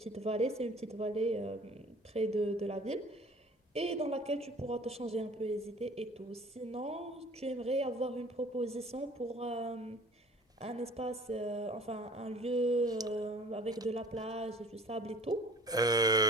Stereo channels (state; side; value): normal; both; correlation 0.49